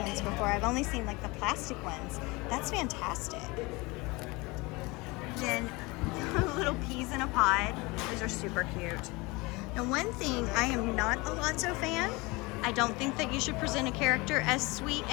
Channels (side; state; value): right; quieter; 24.5 dB